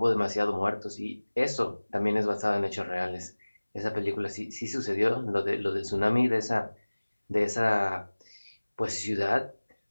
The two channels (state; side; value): inverted; both; correlation -1.00